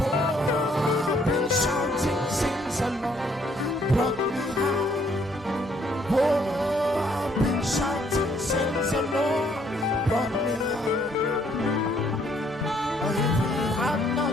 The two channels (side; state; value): both; normal; correlation 0.66